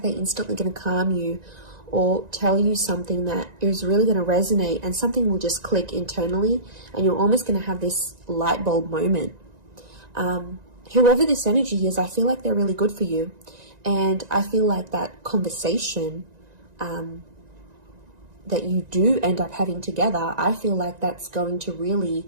they're instantly going to calm you or tell you something that is really going to resonate, and something will just click internally, and you're almost going to have this light bulb moment. Whoever this energy is, I feel like they're really good for you, and I feel like that conversation that you do end up having together, I feel like that's going to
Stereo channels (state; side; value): late; left; 1.9 ms